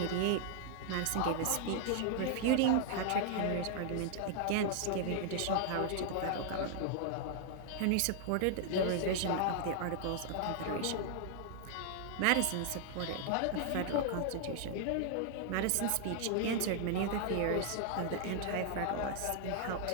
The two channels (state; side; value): different; both; correlation 0.00